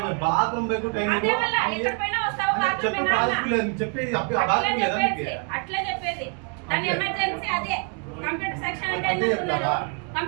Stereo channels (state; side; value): quieter; left; 37.9 dB